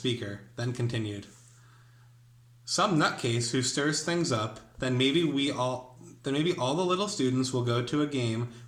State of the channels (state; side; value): identical; both; correlation 1.00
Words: then continued. "Some nutcase who stirs things up, then maybe all the little students will go to a game